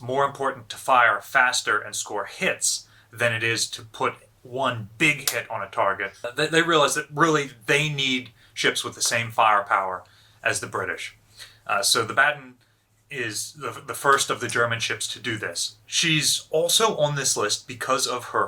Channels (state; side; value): identical; both; correlation 1.00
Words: important to fire faster and score hits than it is to put one big hit on a target. They realize that really they need ships with the same firepower as the British. So the Baden is the first of the German ships to do this. She's also on this list because of